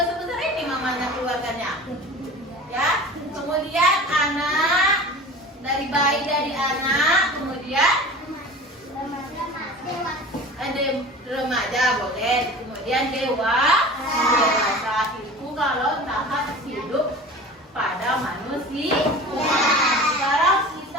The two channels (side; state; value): both; normal; correlation 0.38